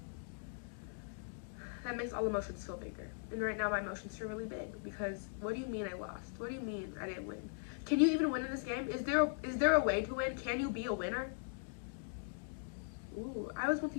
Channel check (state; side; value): silent; right; digital silence